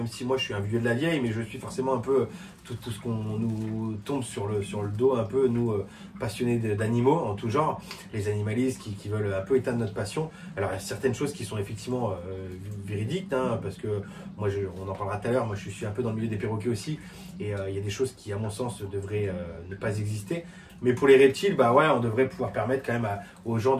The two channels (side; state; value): both; identical; correlation 1.00